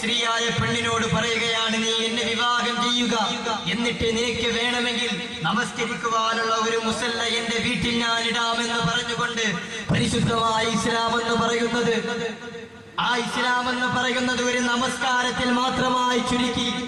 പെണ്ണിനോട് പറയുകയാണ്, നീ എന്നെ വിവാഹം ചെയ്യുക, എന്നിട്ട് നിനക്ക് വേണമെങ്കിൽ നമസ്കരിക്കുവാനുള്ള ഒരു മുസല്ല എന്റെ വീട്ടിൽ ഞാൻ ഇടാമെന്ന് പറഞ്ഞുകൊണ്ട് പരിശുദ്ധമായ ഇസ്ലാം എന്ന് പറയുന്നത് ഒരു നമസ്കാരത്തിൽ മാത്രമായി ചുരുക്കി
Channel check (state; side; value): identical; both; correlation 1.00